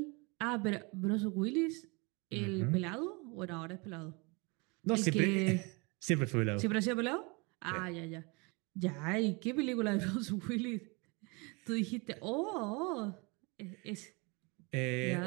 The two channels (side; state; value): left; quieter; 28.9 dB